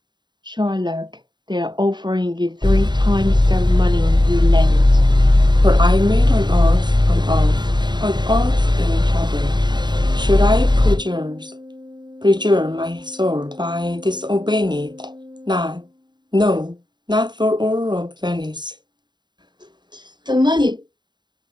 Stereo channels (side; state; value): left; late; 0.21 ms